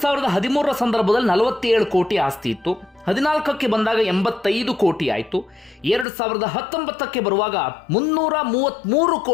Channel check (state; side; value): drops out; right; at 6.1 s